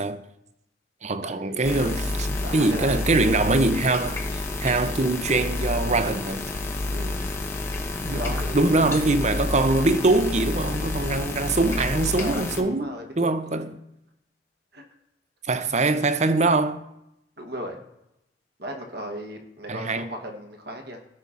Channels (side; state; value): both; normal; correlation 0.45